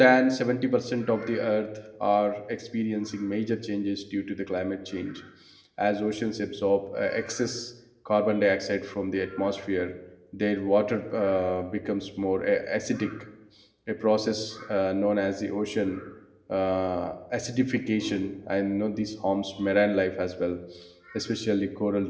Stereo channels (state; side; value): identical; both; correlation 1.00